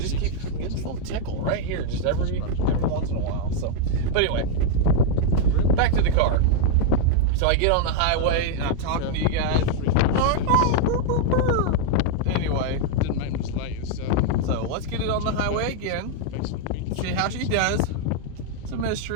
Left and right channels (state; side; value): different; both; correlation 0.00